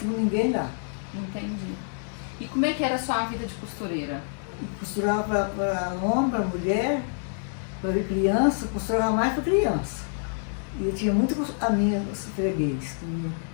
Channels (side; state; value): right; silent; digital silence